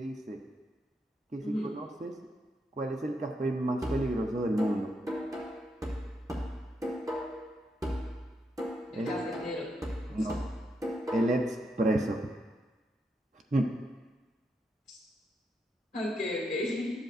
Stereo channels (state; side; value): normal; both; correlation 0.81